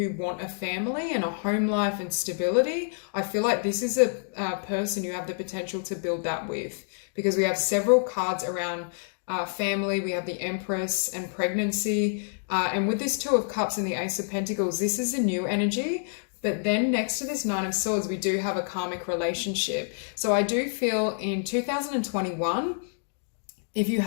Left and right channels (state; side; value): silent; right; digital silence